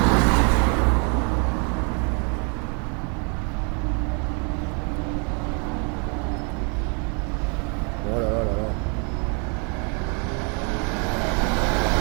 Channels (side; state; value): left; quieter; 36.2 dB